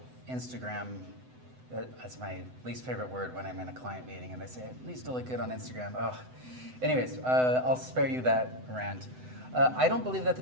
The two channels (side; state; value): left; late; 7.9 ms